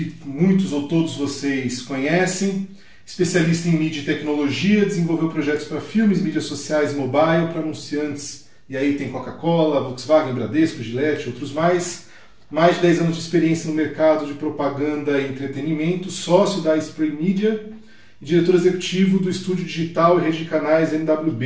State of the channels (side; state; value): both; identical; correlation 1.00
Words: muitos ou todos vocês conhecem, especialista em mídia e tecnologia, desenvolveu projetos para filmes, mídias sociais e mobile, para anunciantes, e aí tem Coca-Cola, Volkswagen, Bradesco, Gillette, outros mais. Mais de 10 anos de experiência no mercado de propaganda e entretenimento, sócio da Spray Media e diretor executivo do estúdio digital e rede de canais